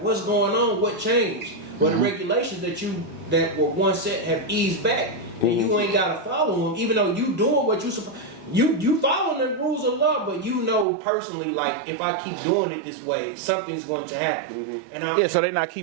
what's going on? What changed? Well, the regulations that were once set have eased back, and you ain't gotta follow them, even though you doing what you supposed. You following the rules of law, but you know personally, like if I keep doing it this way, something's going to happen. And So they're not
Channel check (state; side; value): drops out; left; at 10.9 s